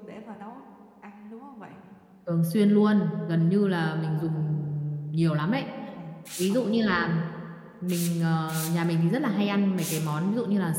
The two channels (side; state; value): both; identical; correlation 1.00